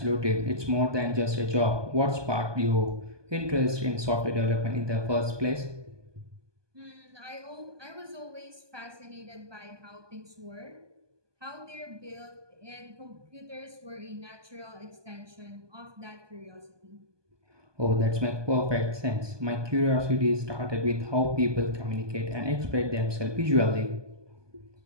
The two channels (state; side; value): late; left; 1.2 ms